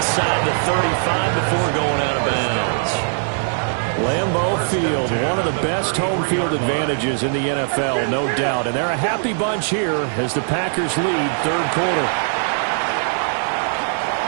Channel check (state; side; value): silent; left; digital silence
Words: the 35 before going out of bounds. Lambeau Field, one of the best home field advantages in the NFL, no doubt. And they're a happy bunch here as the Packers lead third quarter.